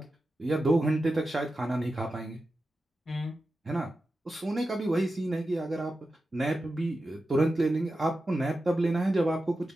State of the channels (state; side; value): normal; both; correlation 0.92